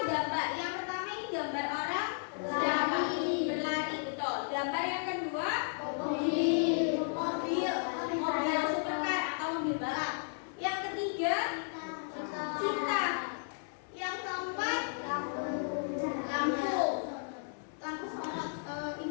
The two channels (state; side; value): silent; right; digital silence